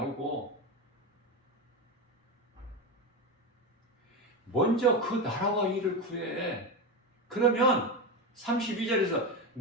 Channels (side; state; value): both; normal; correlation 0.16